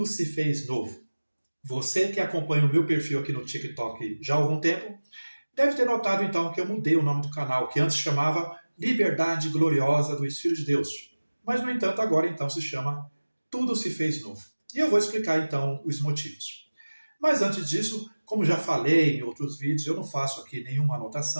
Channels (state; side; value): inverted; both; correlation -1.00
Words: se fez novo. Você que acompanha o meu perfil aqui no TikTok já há algum tempo, deve ter notado então que eu mudei o nome do canal, que antes chamava Liberdade Gloriosa dos Filhos de Deus. Mas, no entanto, agora então se chama Tudo se fez novo. E eu vou explicar então os motivos. Mas antes disso, como já falei em outros vídeos, eu não faço aqui nenhuma